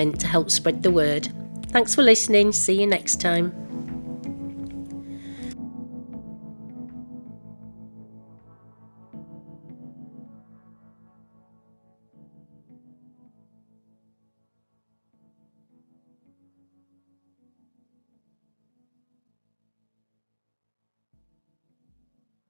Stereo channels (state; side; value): inverted; both; correlation -1.00